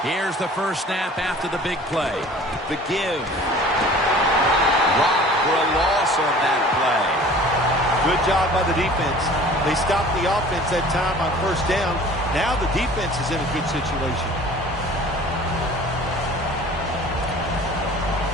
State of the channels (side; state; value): both; normal; correlation 0.46